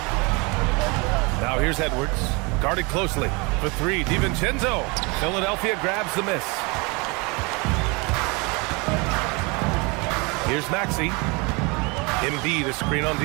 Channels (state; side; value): quieter; left; 28.6 dB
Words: Now here's Edwards. Guarded closely. For three, DiVincenzo. Philadelphia grabs the miss. Here's Maxey. Embiid is screen on